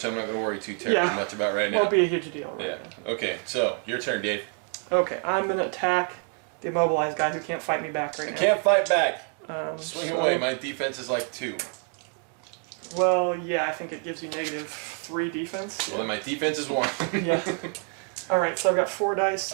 I'm not going to worry too terribly much about right now. Won't be a huge deal right now. Okay, so your turn, Dave. Okay, I'm going to attack the immobilized guy who can't fight me back right now. I can't fight back. Swing so, away. My defense is like 2. Well, yeah, I think it gives you -3 defense. Well, then my defense is 1. Yeah. All right, so I've got 4 dice.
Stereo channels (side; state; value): left; quieter; 39.8 dB